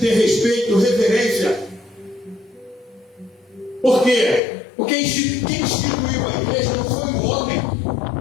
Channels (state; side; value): drops out; right; at 4.4 s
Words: respeito, reverência. Por quê? Porque quem instituiu a igreja não foi um homem.